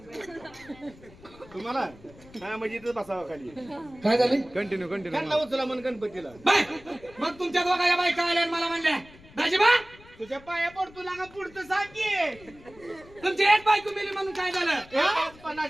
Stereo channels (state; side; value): noise; left; rumble, 23 dB below the sound